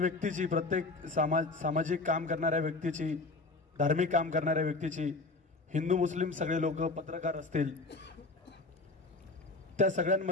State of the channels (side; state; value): right; quieter; 3.4 dB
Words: प्रत्येक सामाजिक काम करणाऱ्या व्यक्तीची, धार्मिक काम करणाऱ्या व्यक्तीची, हिंदू मुस्लिम सगळे लोक, पत्रकार असतील, त्या